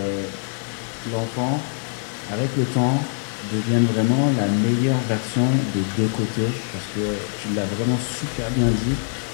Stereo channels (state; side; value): silent; right; 63 dB below the other